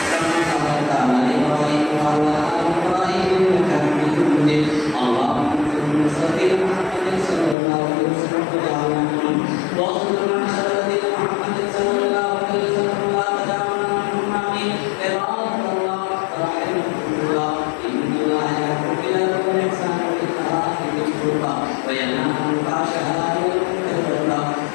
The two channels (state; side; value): drops out; right; at 7.6 s